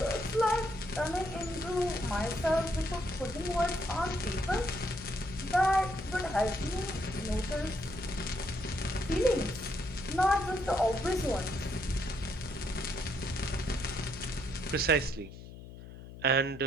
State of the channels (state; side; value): noise; left; hum, 14 dB below the sound